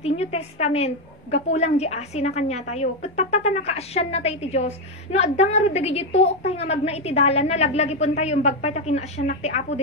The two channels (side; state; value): both; normal; correlation 0.07